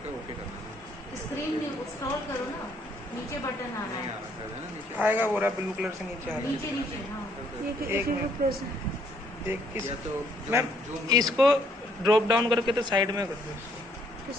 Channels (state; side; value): normal; both; correlation 0.66